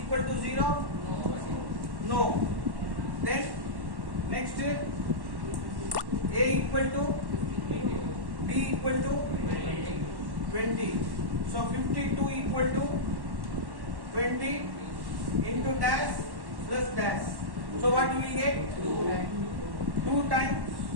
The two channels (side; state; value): left; late; 1.1 ms